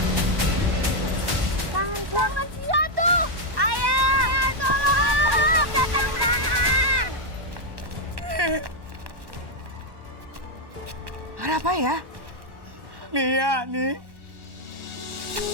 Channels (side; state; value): left; late; 1.1 ms